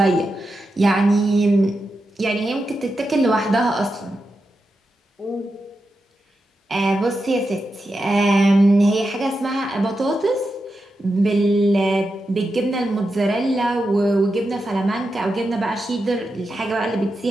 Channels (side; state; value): both; normal; correlation 0.88